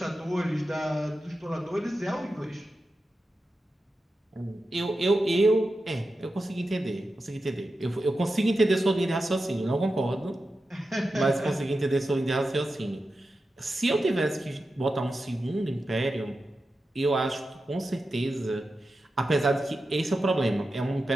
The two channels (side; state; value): both; normal; correlation 0.91